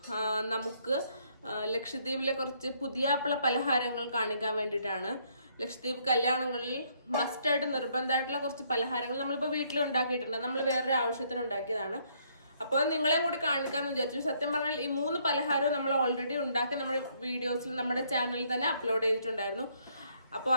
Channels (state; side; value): inverted; both; correlation -0.68